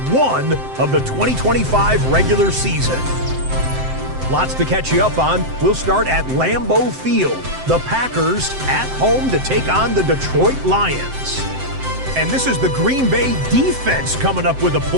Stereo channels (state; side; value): late; left; 7.7 ms